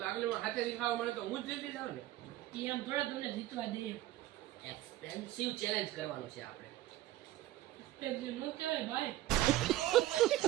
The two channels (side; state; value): left; quieter; 15.2 dB